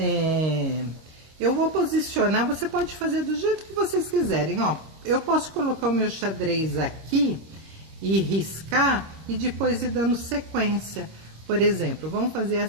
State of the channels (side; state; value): left; late; 26 ms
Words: eu vou posicionar, você pode fazer do jeito que vocês quiserem, ó. Eu posso colocar o meu xadrez aqui e riscar e depois ir dando sequência. Por exemplo, vamos fazer